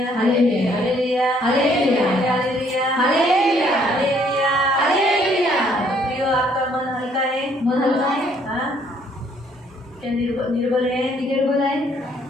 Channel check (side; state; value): both; normal; correlation 0.65